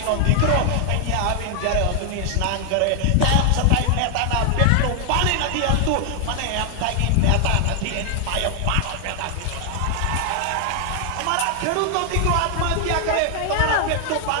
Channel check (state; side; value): different; both; correlation 0.00